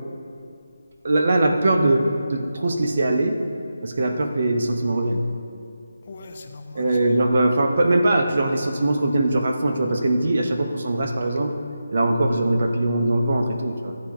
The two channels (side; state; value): both; inverted; correlation -0.89